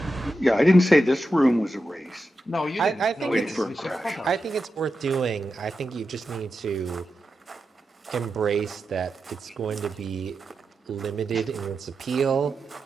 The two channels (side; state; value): both; normal; correlation 0.90